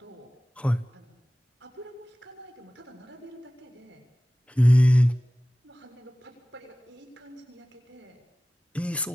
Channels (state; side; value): normal; both; correlation 0.97